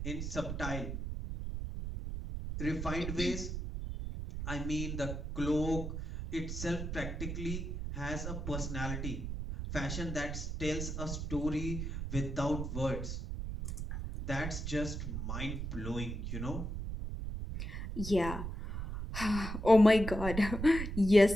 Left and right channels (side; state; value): right; noise; rumble, 5 dB below the sound